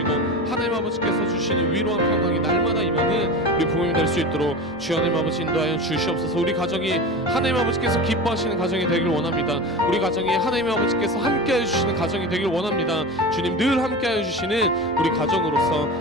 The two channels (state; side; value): normal; both; correlation 0.29